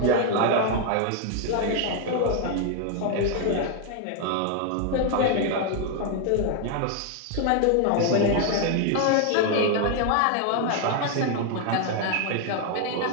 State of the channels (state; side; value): different; both; correlation 0.00